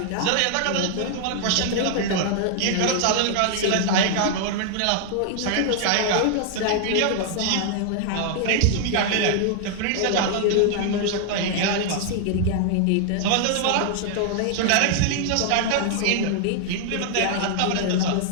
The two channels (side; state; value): both; different; correlation 0.00